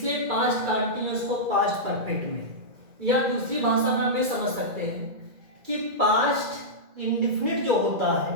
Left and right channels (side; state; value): left; late; 2.1 ms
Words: पास्ट कॉन्टिन्यूअस को पास्ट परफेक्ट में, या दूसरी भाषा में हमें समझ सकते हैं कि पास्ट इंडेफिनिट जो होता है